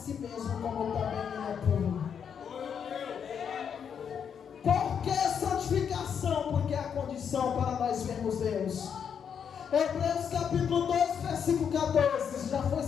mesmo, como também Ele é puro. Por que santificação? Porque é a condição para nós vermos Deus. Hebreus capítulo 2, versículo 14, já foi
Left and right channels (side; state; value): right; quieter; 7.5 dB